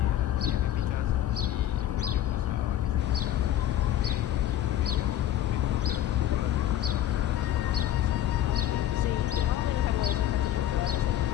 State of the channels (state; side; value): quieter; right; 12.1 dB